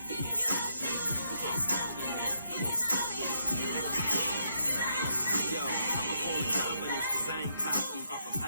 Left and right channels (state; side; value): inverted; both; correlation -0.76